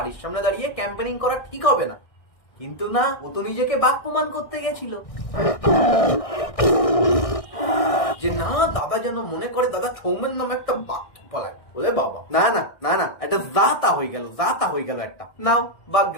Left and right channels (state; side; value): late; right; 1.6 ms